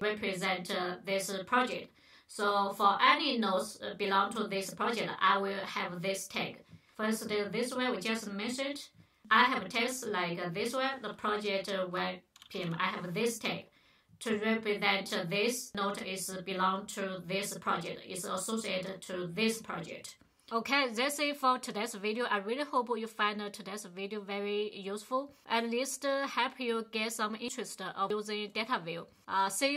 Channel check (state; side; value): identical; both; correlation 1.00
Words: this project. So for any nodes belong to this project, I will have this tag. First, this one we just mentioned. I have text like this one, the project web PM. I have this tag to represent this node is belong to this project, is associated to this project. Okay, that's it for today's video. I really hope you find today's video very useful. At least help you get some interest of using Dataview. See